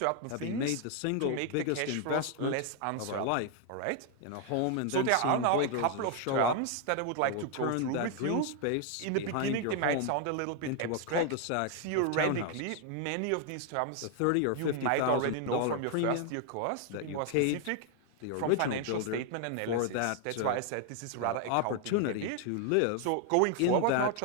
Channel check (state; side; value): different; both; correlation 0.00